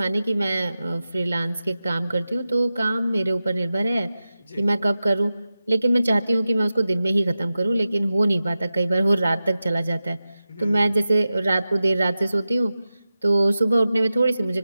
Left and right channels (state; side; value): inverted; both; correlation -0.93